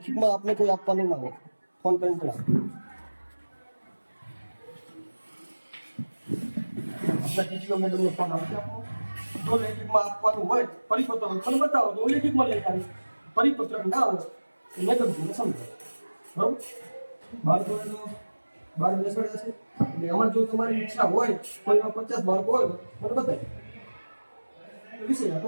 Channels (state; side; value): inverted; both; correlation -1.00